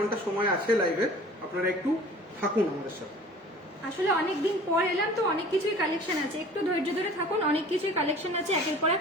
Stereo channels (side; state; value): both; normal; correlation 0.45